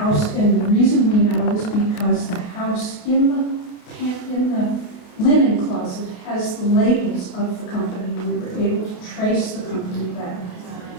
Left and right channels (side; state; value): right; late; 29 ms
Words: and the reason we know is because the house in the linen closet has the labels of the company. We were able to trace the company back.